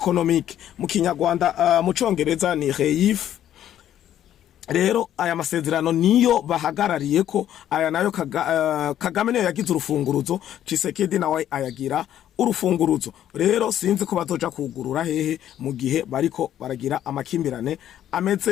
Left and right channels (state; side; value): quieter; right; 11.2 dB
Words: mu Kinyarwanda mu Congereza ni REIF. Rero aya masezerano niyo bahagarariye ko aya nayo Kagame niyo yagize urufunguruzo, Tshisekedi nawe ayagira urufunguruzo. Rero sinzi ko bazoja kugurura hehe mu gihe bariko baragira amakimbirane